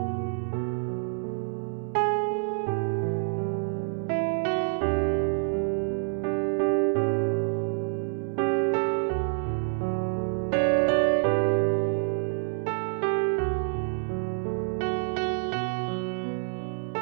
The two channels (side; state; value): left; silent; 60 dB below the other